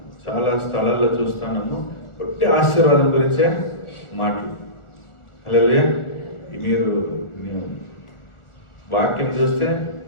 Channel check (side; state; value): right; late; 1.4 ms